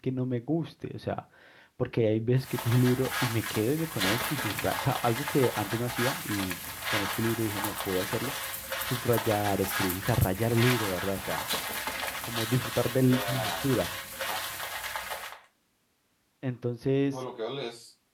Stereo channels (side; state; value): both; identical; correlation 1.00